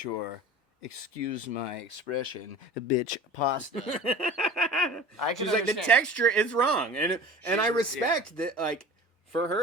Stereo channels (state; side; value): normal; both; correlation 0.39